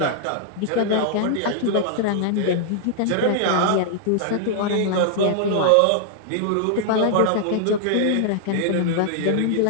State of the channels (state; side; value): different; both; correlation -0.01